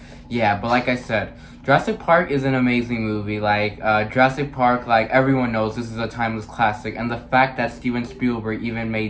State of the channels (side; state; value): both; identical; correlation 1.00